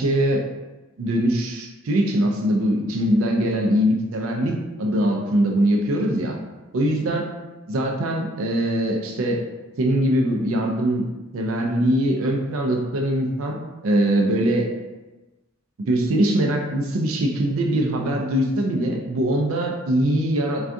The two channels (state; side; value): normal; both; correlation 0.66